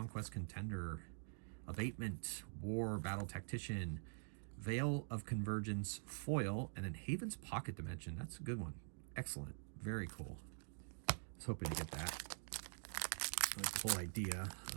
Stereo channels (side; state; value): left; silent; digital silence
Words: Contender, Abatement, War, Battle Tactician, Veil of Convergence, Foil, and then Haven's Pocket Dimension. That's a good one. Excellent. Very cool. I was hoping to get that. I like the whole idea